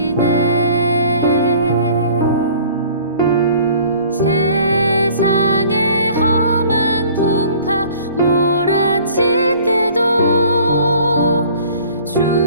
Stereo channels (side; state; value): both; inverted; correlation -0.50